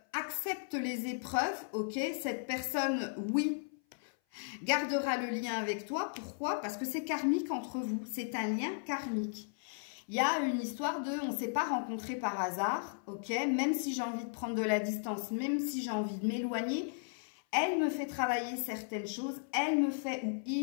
accepte les épreuves, ok? Cette personne, oui, gardera le lien avec toi. Pourquoi? Parce que c'est karmique entre vous. C'est un lien karmique. Il y a une histoire de, on ne s'est pas rencontrés par hasard, ok? Même si j'ai envie de prendre de la distance, même si j'ai envie de m'éloigner, elle me fait travailler certaines choses, elle me fait ou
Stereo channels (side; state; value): right; silent; 54 dB below the other